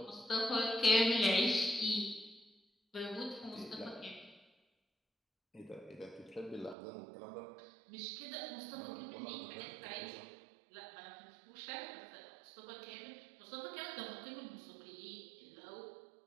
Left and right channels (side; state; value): left; drops out; at 6.8 s